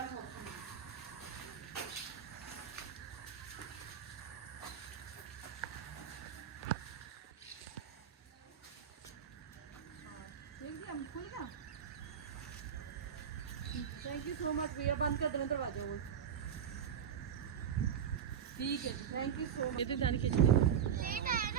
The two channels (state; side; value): quieter; left; 8.4 dB